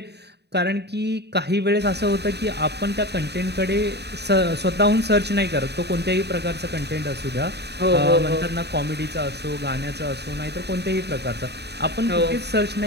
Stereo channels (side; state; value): left; late; 0.49 ms